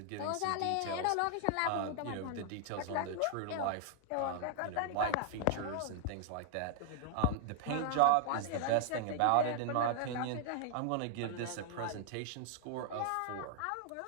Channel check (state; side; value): different; both; correlation 0.00